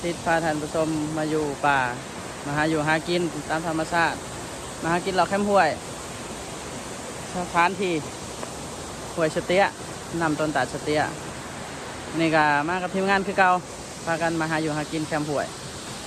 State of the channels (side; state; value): both; identical; correlation 1.00